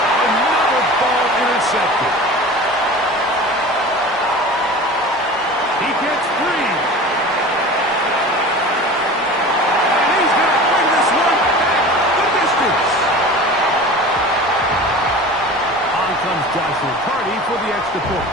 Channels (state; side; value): normal; both; correlation 0.36